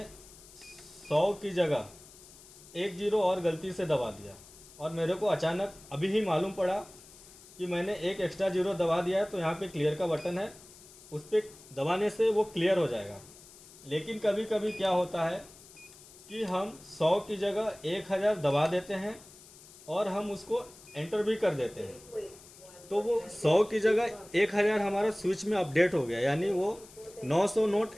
100 की जगह 1 जीरो और गलती से दबा दिया, और मेरे को अचानक अभी ही मालूम पड़ा कि मैंने एक एक्स्ट्रा जीरो दबा दिया है। तो यहाँ पे क्लियर का बटन है, उस पर दबाने से वो क्लियर हो जाएगा। लेकिन कभी कभी क्या होता है कि हम 100 की जगह 1000 दबा देते हैं और हम उसको एंटर भी कर देते हैं, तो वो 100 की जगह 1000 हमारा स्विच में अपडेट हो गया, यानी वो 900 नोट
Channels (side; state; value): left; noise; hiss, 21 dB below the sound